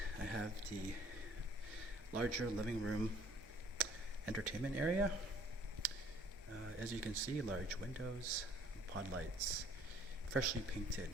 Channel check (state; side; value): normal; both; correlation 0.57